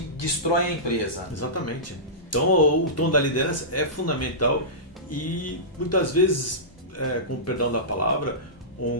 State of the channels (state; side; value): normal; both; correlation -0.18